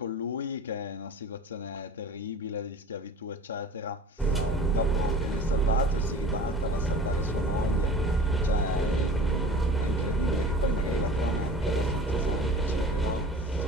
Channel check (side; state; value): both; normal; correlation 0.41